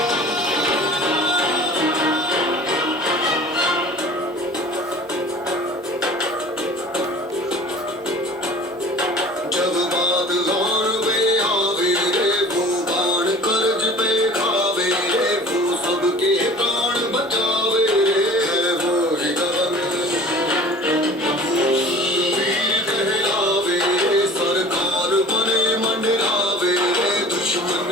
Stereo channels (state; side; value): normal; both; correlation 0.44